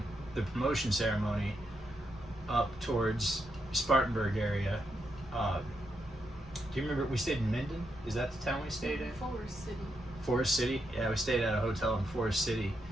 the promotion ceremony up towards Spartanburg area. Do you remember we stayed in Minden? Is that the town we stayed in? Forest City. Forest City? Yeah, we stayed at a hotel in Forest City.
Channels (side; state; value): both; normal; correlation 0.82